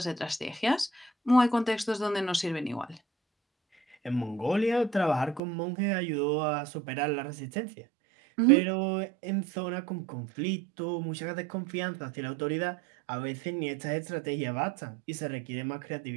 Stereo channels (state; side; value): drops out; left; at 5.4 s